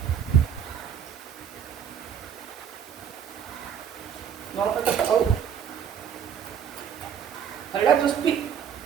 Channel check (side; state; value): left; quieter; 8.2 dB